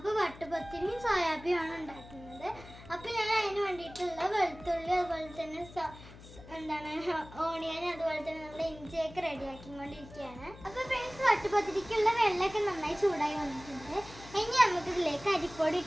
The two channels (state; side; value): noise; left; hum, 18 dB below the sound